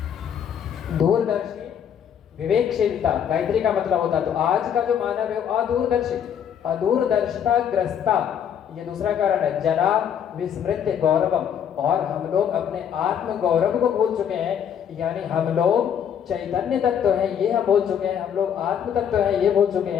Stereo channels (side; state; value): right; quieter; 8.6 dB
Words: दूरदर्शी विवेकशीलता गायत्री का मतलब होता है। तो आज का जो मानव है वो अदूरदर्शी, अदूरदर्शिता ग्रस्ता, ये दूसरा कारण है। जना विस्मृत्य गौरवम, और हम लोग अपने आत्म गौरव को भूल चुके हैं, यानी हम लोग चैतन्य तत्व हैं ये हम भूल चुके हैं, हम लोग आत्म तत्व हैं ये भूल चुके